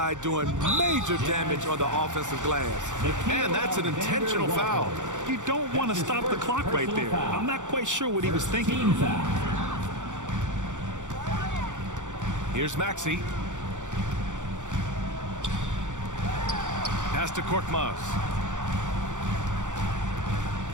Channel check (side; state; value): left; late; 0.86 ms